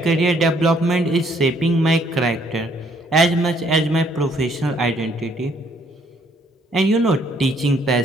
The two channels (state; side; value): normal; both; correlation 0.66